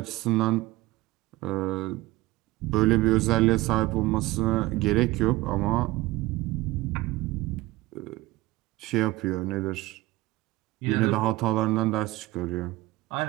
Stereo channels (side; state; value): left; quieter; 18.6 dB